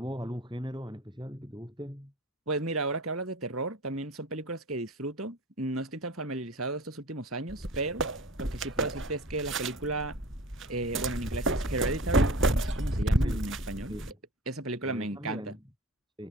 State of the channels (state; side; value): normal; both; correlation 0.37